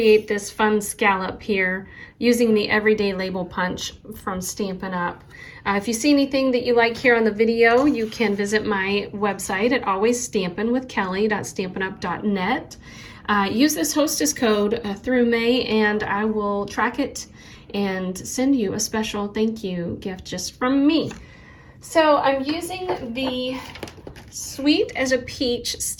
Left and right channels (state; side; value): identical; both; correlation 1.00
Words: this fun scallop here using the Everyday Label Punch from Stampin' Up. If you see anything that you like here on the video, you can visit my website at alwaysstampinwithkelly.stampinup.net. Use this hostess code through May, and I will track it and send you a special thank you gift just from me. So I'm using the Sweet as a Peach